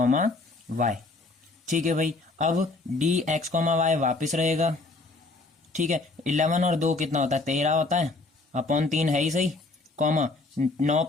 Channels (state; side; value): quieter; right; 3.3 dB